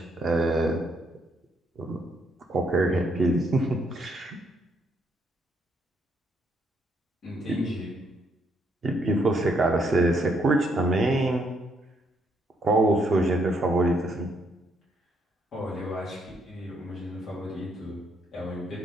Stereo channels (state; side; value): normal; both; correlation 0.73